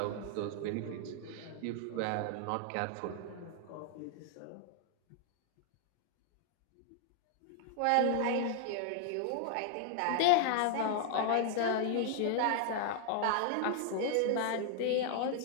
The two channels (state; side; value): different; both; correlation 0.00